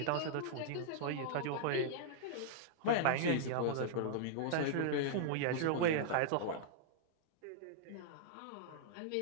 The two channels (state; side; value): different; both; correlation -0.01